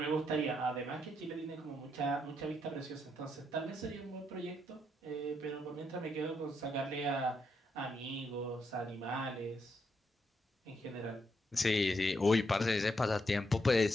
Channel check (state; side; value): normal; both; correlation 0.79